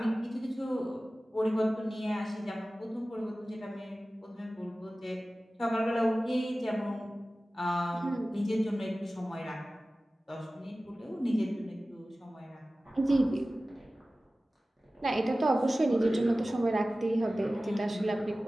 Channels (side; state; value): both; normal; correlation 0.96